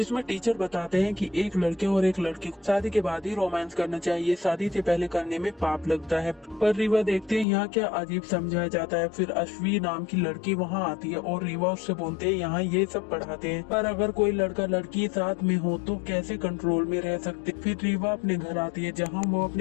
टीचर बताते हैं कि एक लड़के और एक लड़की को शादी के बाद ही रोमांस करना चाहिए, शादी से पहले करने में पाप लगता है। पर रीवा देखते हैं यहाँ क्या अजीब समझाया जाता है। फिर अश्वी नाम की लड़की वहाँ आती है और रीवा उससे बोलते हैं यहाँ ये सब पढ़ाते हैं, पर अगर कोई लड़का लड़की साथ में हो तो कैसे कंट्रोल में रह सकते। फिर रीवा अपने घर आती है जहाँ वो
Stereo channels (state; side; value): drops out; right; at 7.5 s